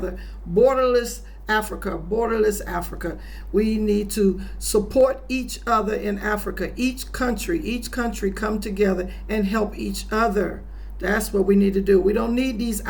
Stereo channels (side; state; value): both; identical; correlation 1.00